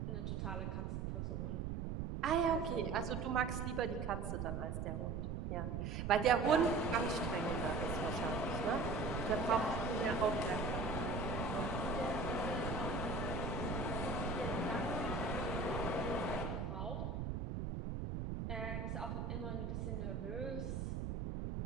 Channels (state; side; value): noise; right; rumble, 2 dB below the sound